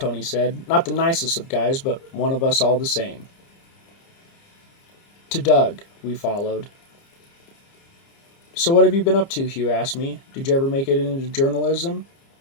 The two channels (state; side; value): late; right; 30 ms